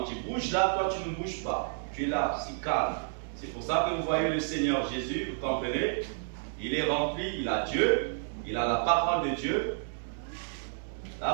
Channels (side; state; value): left; silent; digital silence